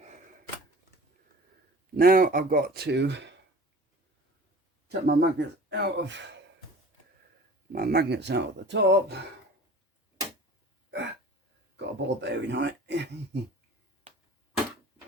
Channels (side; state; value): both; normal; correlation 0.43